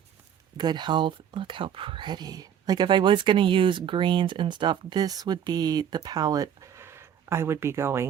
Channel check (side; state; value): left; quieter; 9.1 dB